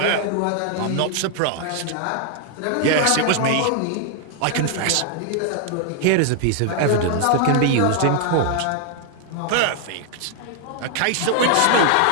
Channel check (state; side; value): different; both; correlation 0.00